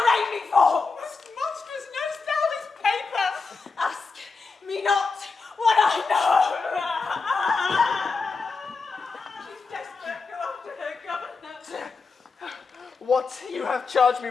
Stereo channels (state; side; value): quieter; right; 4.4 dB